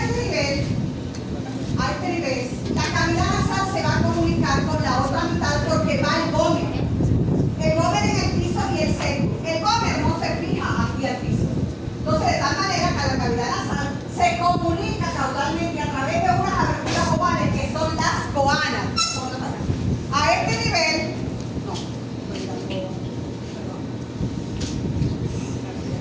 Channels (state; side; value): identical; both; correlation 1.00